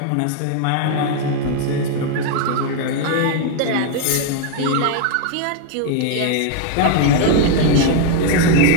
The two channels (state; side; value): different; both; correlation 0.00